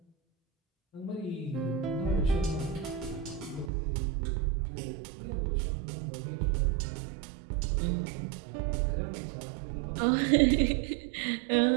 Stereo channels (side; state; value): left; drops out; at 3.7 s